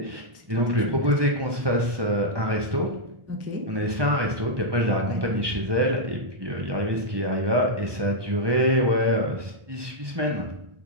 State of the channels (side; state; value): left; late; 1.2 ms